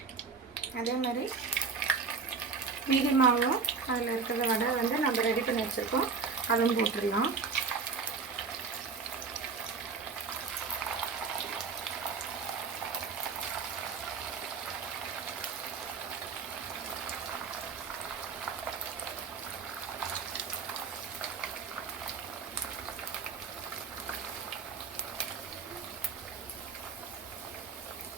அதே மாதிரி மீதி மாவும் அதில் இருக்கிற வடை வந்து நம்ம ரெடி பண்ணி வச்சுருக்கோம், அதுவும் போட்டுடலாம்.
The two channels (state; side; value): quieter; left; 4.9 dB